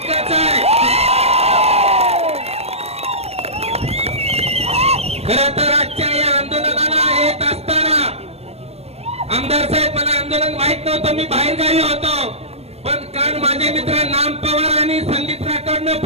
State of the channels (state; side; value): late; left; 0.30 ms